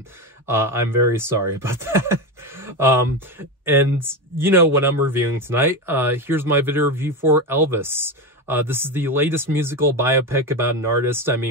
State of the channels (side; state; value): both; normal; correlation 0.17